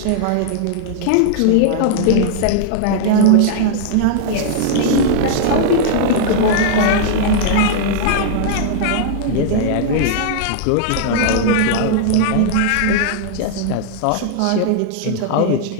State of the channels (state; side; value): different; both; correlation -0.01